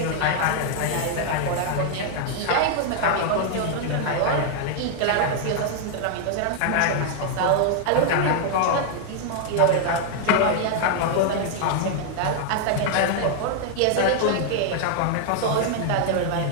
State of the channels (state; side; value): different; both; correlation 0.00